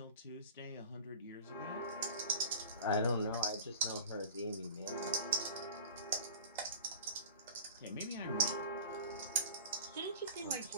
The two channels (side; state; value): both; inverted; correlation -0.37